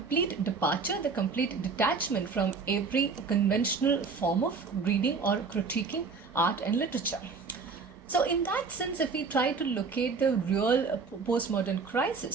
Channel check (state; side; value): quieter; left; 4.8 dB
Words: departure, the complete detachment from every conventional form of reading or critiquing art and literature. So in that sense, if we try to locate the real postmodern